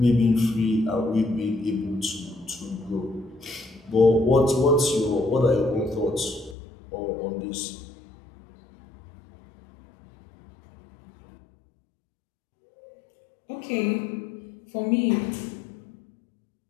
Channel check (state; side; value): drops out; right; at 6.6 s